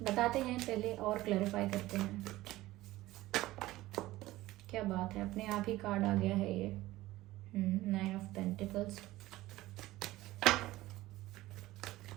बताते हैं पहले और क्लैरिफाई करते हैं क्या बात है। अपने आप ही कार्ड आ गया है ये, 9 of pentacles.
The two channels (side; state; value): left; quieter; 17.2 dB